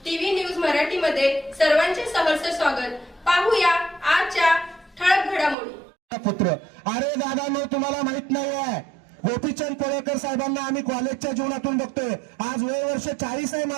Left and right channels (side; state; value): left; drops out; at 5.6 s